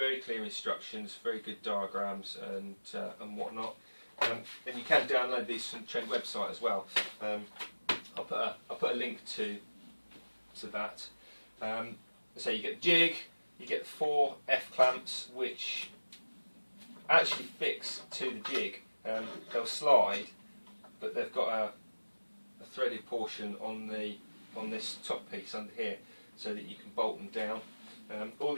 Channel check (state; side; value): inverted; both; correlation -1.00